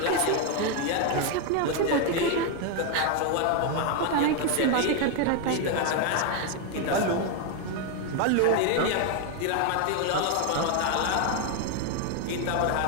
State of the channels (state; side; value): different; both; correlation 0.01